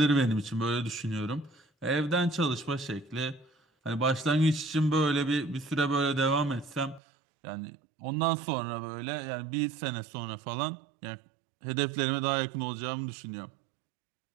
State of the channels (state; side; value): drops out; left; at 7.0 s